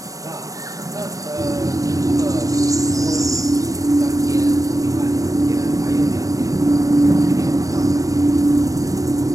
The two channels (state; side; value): late; left; 0.16 ms